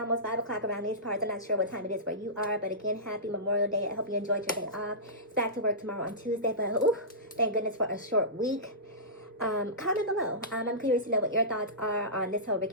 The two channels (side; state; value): both; normal; correlation -0.19